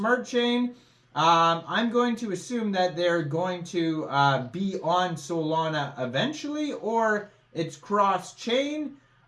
Chain. I'm going to assume that they're going to be on Solana eventually, or it's cross-chain.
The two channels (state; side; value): identical; both; correlation 1.00